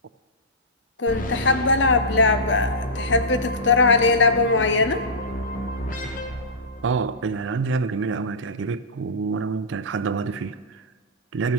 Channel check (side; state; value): both; normal; correlation -0.18